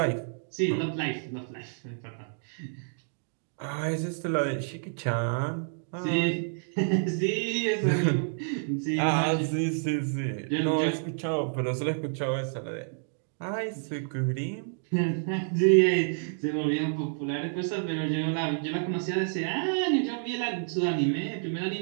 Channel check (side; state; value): left; silent; digital silence